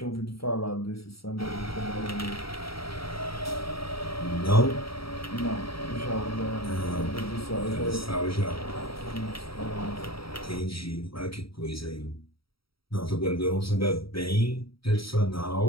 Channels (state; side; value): late; right; 0.75 ms